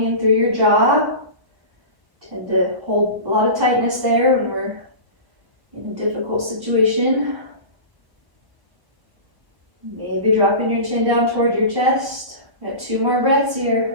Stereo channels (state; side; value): late; left; 1.0 ms